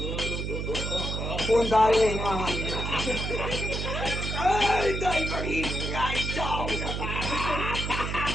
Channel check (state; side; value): noise; right; hum, 3 dB below the sound